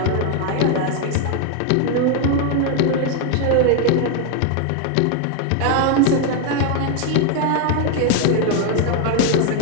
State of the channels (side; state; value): both; different; correlation 0.01